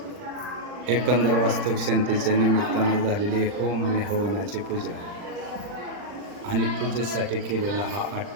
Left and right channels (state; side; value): late; left; 40 ms